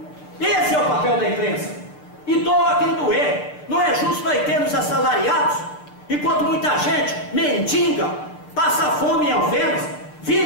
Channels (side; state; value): right; late; 6.7 ms